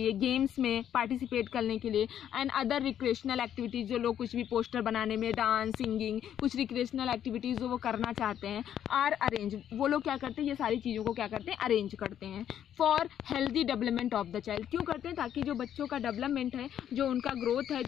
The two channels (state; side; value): quieter; right; 10.1 dB